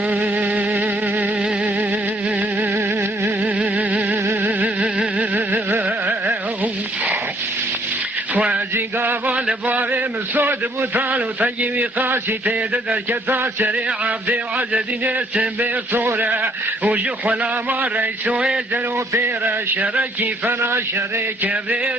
خوازی قابل بابي مسود بوتالو تجيبي قاسي تيدر كتا سريع عبدي وعزدين اسم بصورة وجو خلاما ريسو يزلو بيرا شركي فنا شريك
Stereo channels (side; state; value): both; normal; correlation 0.65